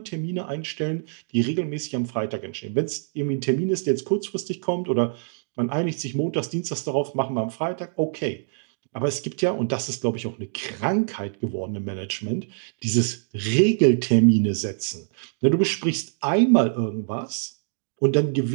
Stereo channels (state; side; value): silent; left; digital silence